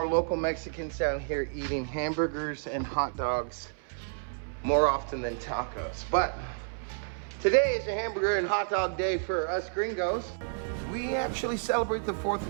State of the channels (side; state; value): left; silent; 58 dB below the other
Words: local Mexicans down here eating hamburgers and hot dogs more often than tacos. But today is a hamburger and hot dog day for us gringos. We actually celebrate the